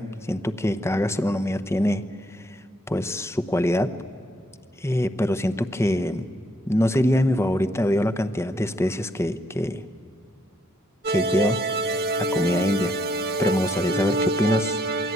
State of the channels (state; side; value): normal; both; correlation 0.72